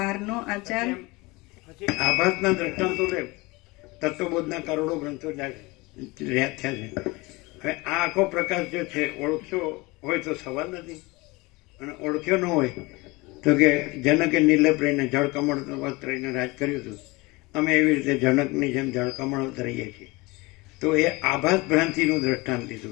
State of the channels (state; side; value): quieter; right; 23.7 dB